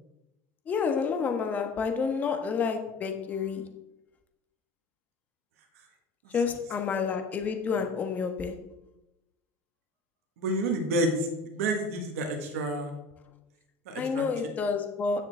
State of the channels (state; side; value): quieter; right; 3.0 dB